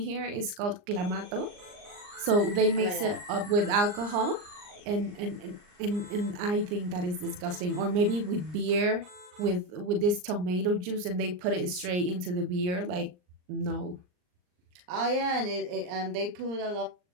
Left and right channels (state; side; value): late; left; 39 ms